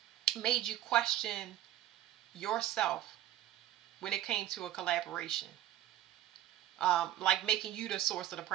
made you question yourself when it came to a collaboration. like making you the source of the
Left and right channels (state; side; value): quieter; left; 13.1 dB